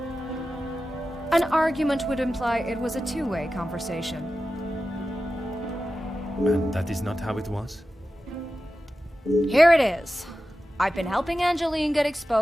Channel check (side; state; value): both; normal; correlation 0.93